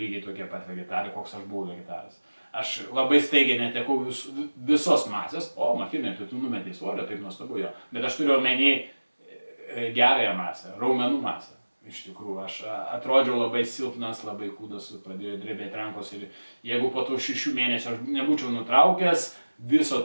tokie pat vegetarai, koks aš buvau vegetaras. Aš labai staigiai netekau visos masės, Martynai, tu numetei svorio, taip nuostabu jo, bet aš turiu omeny gerąją masę, raumenų masę. Iš tikrųjų, aš atrodžiau labai silpnas, labai kūdas, pradėjo drebėti rankos ir jeigu po tų 6 mėnesių aš nebūčiau nutraukęs viso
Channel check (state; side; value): inverted; both; correlation -1.00